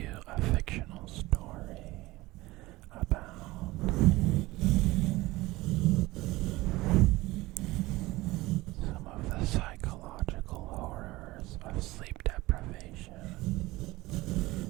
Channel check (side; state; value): left; quieter; 19.6 dB